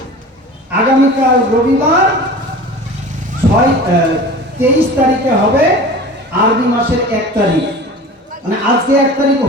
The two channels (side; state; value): both; normal; correlation 0.38